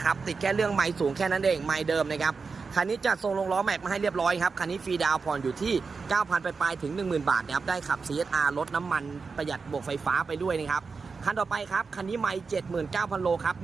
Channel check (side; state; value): left; quieter; 4.8 dB